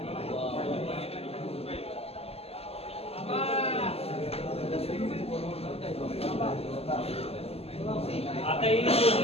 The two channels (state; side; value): late; right; 0.29 ms